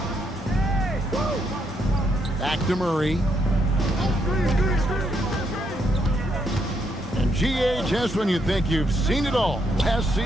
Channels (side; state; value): both; normal; correlation 0.76